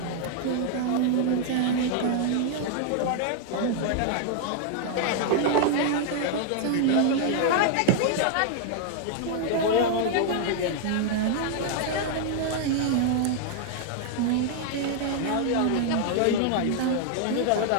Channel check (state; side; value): different; both; correlation 0.00